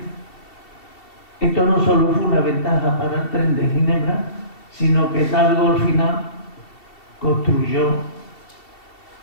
Esto no solo fue una ventaja para el tren de Ginebra, sino que Talgo al final construyó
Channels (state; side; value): late; right; 2.7 ms